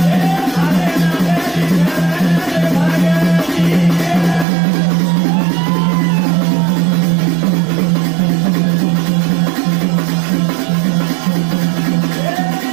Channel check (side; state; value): left; drops out; at 4.5 s